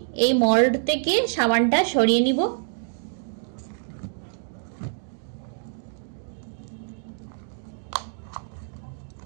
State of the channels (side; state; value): left; silent; digital silence